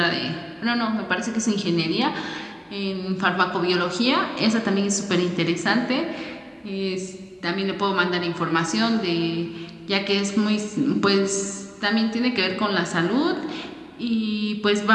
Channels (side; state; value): both; identical; correlation 1.00